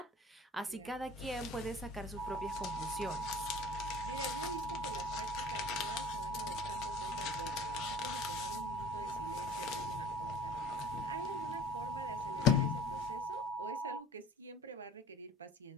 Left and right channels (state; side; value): normal; both; correlation 0.44